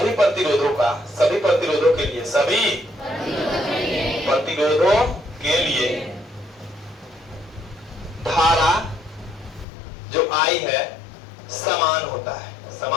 प्रतिरोधों का, सभी प्रतिरोधों के लिए, सभी प्रतिरोधों के लिए धारा जो आई है समान होता है,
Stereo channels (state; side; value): drops out; right; at 9.7 s